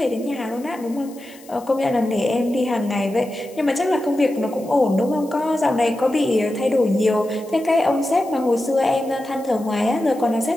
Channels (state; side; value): noise; left; hiss, 23 dB below the sound